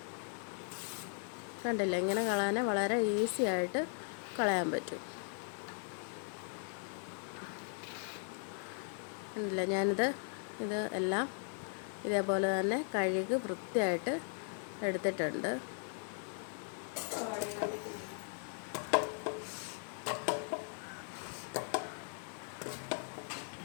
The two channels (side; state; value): right; silent; 52 dB below the other